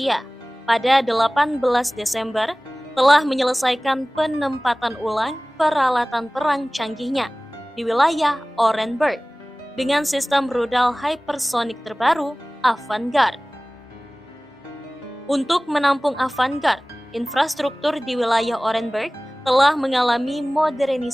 pada 18 Desember telah menyelesaikan penempatan ulang peralatan perang canggihnya di wilayah Orenburg dengan sistem rudal hypersonic terbaru Avangard. Untuk menampung Avangard, infrastruktur di wilayah Orenburg telah mengalami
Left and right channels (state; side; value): normal; both; correlation 0.98